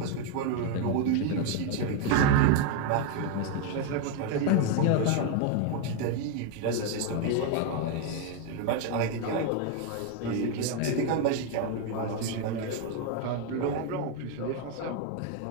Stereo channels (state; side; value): different; both; correlation 0.01